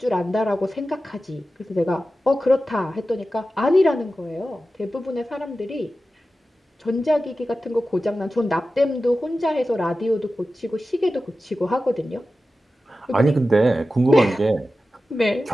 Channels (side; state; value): both; normal; correlation 0.94